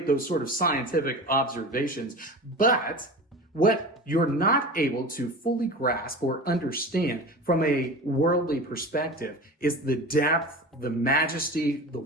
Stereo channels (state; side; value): normal; both; correlation 0.32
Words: those sort of scientific observations. But what you're not able to fully grasp or understand from a worldly perspective is the depth, the majesty, the